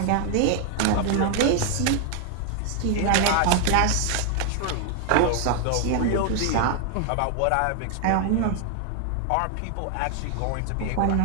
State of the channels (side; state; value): both; different; correlation 0.00